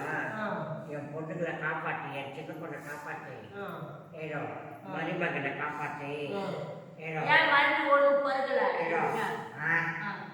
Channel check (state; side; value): identical; both; correlation 1.00